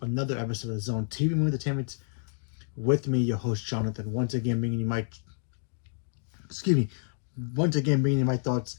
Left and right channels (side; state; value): right; silent; digital silence